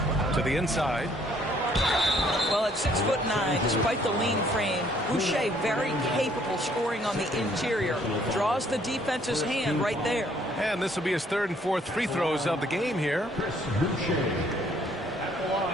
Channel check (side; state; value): both; normal; correlation 0.63